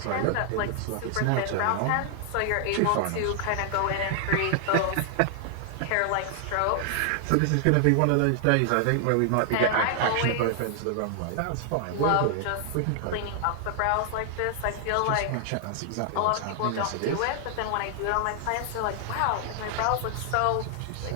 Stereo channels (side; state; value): both; different; correlation 0.00